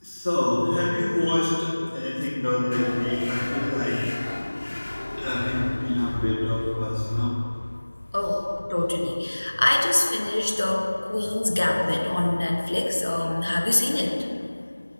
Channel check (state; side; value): inverted; both; correlation -1.00